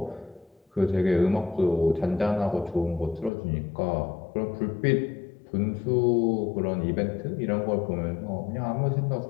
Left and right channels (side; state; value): right; drops out; at 3.3 s